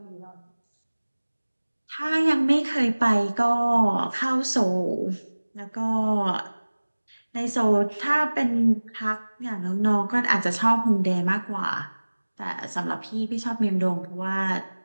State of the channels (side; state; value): both; inverted; correlation -1.00